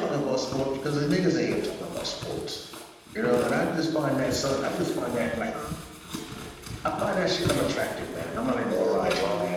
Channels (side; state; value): both; identical; correlation 1.00